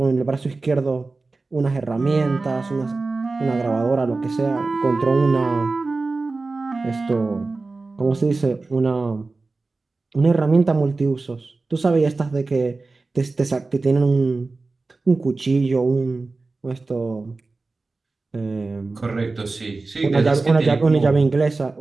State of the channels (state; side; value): quieter; left; 3.6 dB